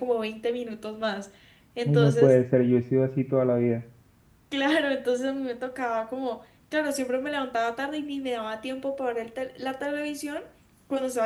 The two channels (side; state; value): both; identical; correlation 1.00